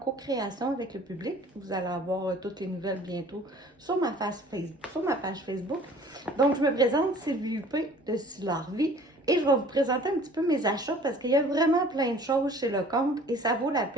avec le public. Vous allez avoir toutes les nouvelles bientôt sur ma page Facebook. Donc, je me présente Sylvie Huppé de Style et je vais vous présenter un petit peu mes achats parce qu'il y a vraiment plein de choses chez Lecomte et ça vaut la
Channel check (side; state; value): both; normal; correlation 0.50